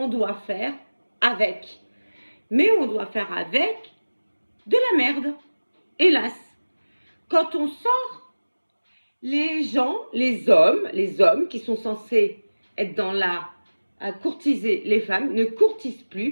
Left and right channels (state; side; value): inverted; both; correlation -1.00